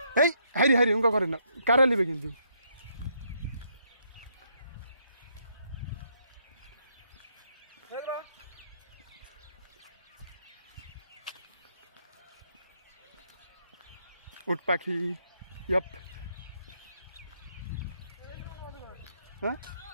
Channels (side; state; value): both; inverted; correlation -0.73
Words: এই হাইরি উঙ্কা করেন না, কারা নিবে কিন্তু। উট পাখি, ইয়াপ। হ্যাঁ